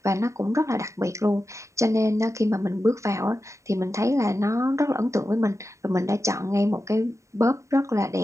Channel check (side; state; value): left; late; 0.14 ms